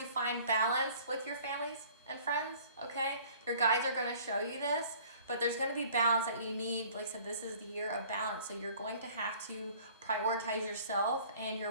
find balance with your families and friends, okay? Your guides are going to show you this, but there's going to be balance that you need. Like I said, this is the year of balance, so you're going to have to prioritize yourself and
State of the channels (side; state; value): both; inverted; correlation -0.51